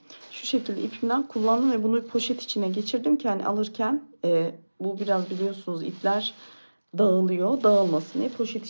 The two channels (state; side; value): inverted; both; correlation -1.00